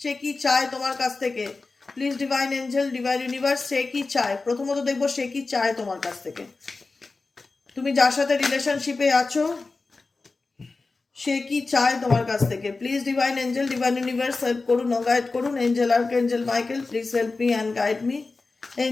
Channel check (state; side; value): quieter; right; 3.8 dB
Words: কি চায় তোমার কাছ থেকে। Please divine angel, divine universe, সে কি চায়? প্রথমত দেখবো সে কি চায় তোমার কাছ থেকে। তুমি যার সাথে রিলেশনশিপে আছো সে কি চায় তোমার কাছ থেকে। Please divine angel, divine universe help করুন ও গাইড করুন। Angel archangel Michael please help me and guide me.